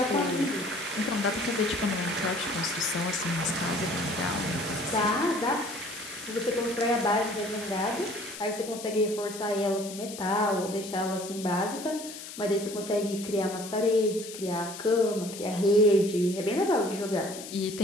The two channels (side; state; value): left; noise; hiss, 12 dB below the sound